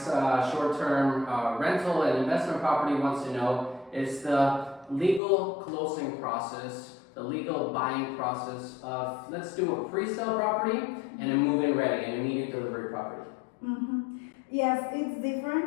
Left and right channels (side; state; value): right; drops out; at 5.2 s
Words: short-term rental and investment property wants to know, is the legal closing process, the legal buying process of, let's do a pre-sale property and a move-in ready and immediate delivery property. Mm-hmm. Yes, it's